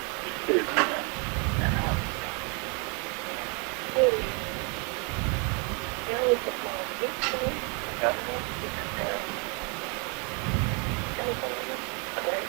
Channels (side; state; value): left; quieter; 34.9 dB